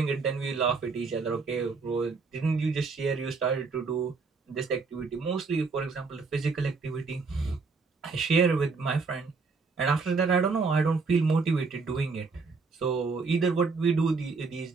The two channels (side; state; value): left; quieter; 4.5 dB